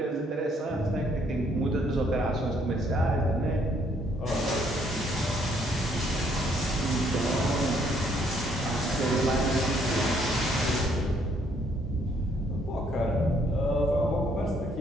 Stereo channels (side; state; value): both; normal; correlation 0.67